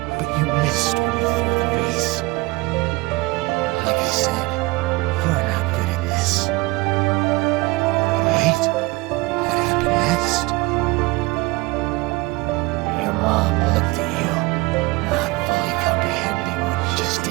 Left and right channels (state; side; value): quieter; left; 23.1 dB